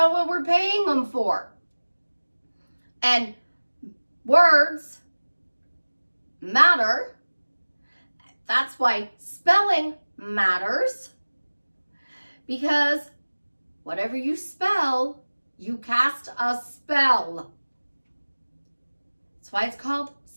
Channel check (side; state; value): both; inverted; correlation -1.00